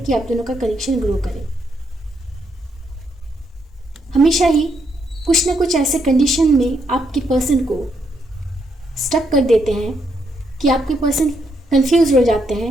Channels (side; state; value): both; normal; correlation 0.77